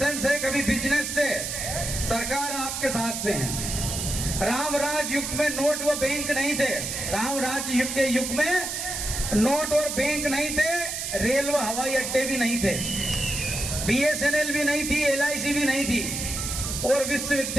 से, कभी बिजनेस से। सरकार आपके साथ में है। राम राज युग में नोट व बैंक नहीं थे। राम राज युग के युग में नोट और बैंक नहीं थे, रेल व हवाई अड्डे भी नहीं थे, बीएसएनएल भी नहीं थी, एलआईसी भी नहीं थी, और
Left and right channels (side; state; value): right; noise; hiss, 4 dB below the sound